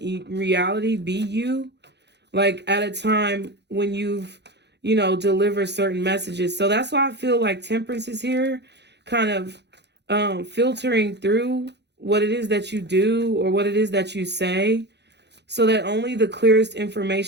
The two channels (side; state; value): left; late; 0.50 ms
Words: reality, be you, like at a time when you've, you know, deliver certain messages. So that's why I feel like Temperance is here, kind of filtering through what it is that you do or what it is that you say, so that only the clearest